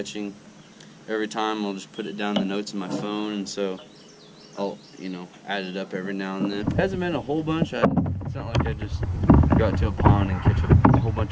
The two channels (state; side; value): identical; both; correlation 1.00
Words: Every time I'll just put it down in the notes in my phone, and so I'll, you know, add it up every now and then. It hasn't been a whole bunch. It's not like I just go out to a pond and catch a whole